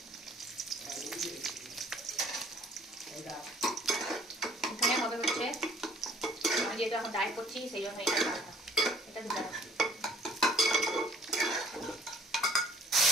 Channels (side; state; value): both; normal; correlation 0.56